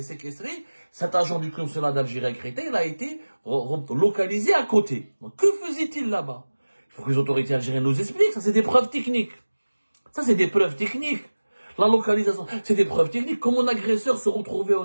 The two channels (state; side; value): inverted; both; correlation -1.00